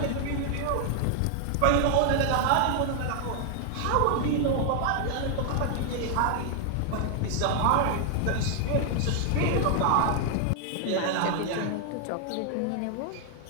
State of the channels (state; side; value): different; both; correlation 0.00